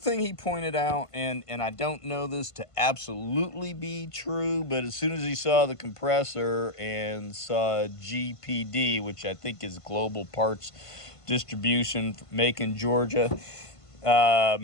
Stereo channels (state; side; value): late; right; 1.5 ms